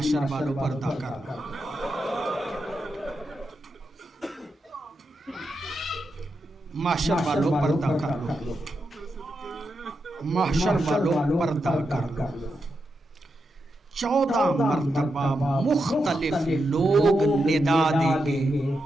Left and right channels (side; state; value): both; normal; correlation 0.86